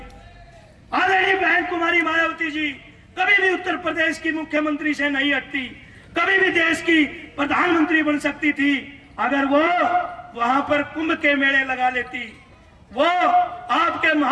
आदरणीय बहन कुमारी मायावती जी कभी भी उत्तर प्रदेश की मुख्यमंत्री से नहीं हटती, कभी भी देश की प्रधानमंत्री बन सकती थी अगर वो वहां पर कुंभ के मेले लगा लेती। वो आपके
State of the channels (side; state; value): both; identical; correlation 1.00